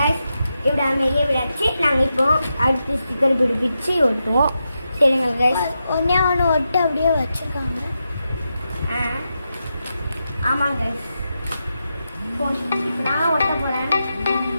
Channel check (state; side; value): inverted; both; correlation -0.87